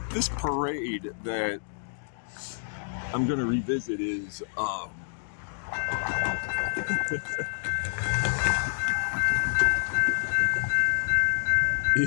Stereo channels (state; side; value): silent; right; digital silence